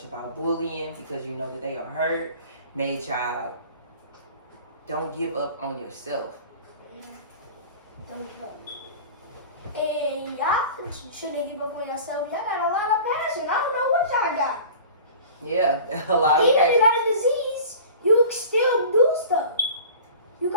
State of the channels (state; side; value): inverted; both; correlation -0.40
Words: about bullying because you know that they are hurt, made y'all don't give up on yourself. Don't give up. And y'all shouldn't give up on yourself. Y'all got a lot of passion. I don't know what y'all got. Yeah, a lot of Even if passion. you got a disease, you can still do stuff. You